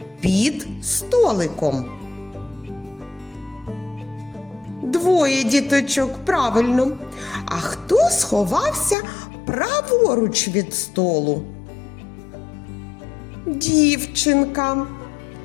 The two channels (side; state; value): right; drops out; at 9.0 s